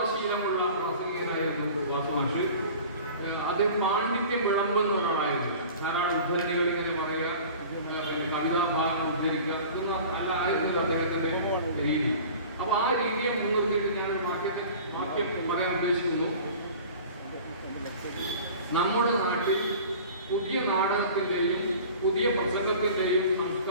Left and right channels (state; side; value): inverted; both; correlation -0.42